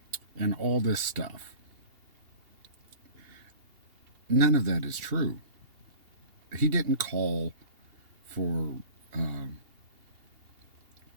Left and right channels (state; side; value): late; left; 2.8 ms